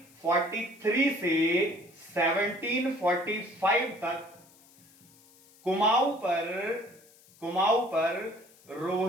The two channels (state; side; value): noise; left; hiss, 27 dB below the sound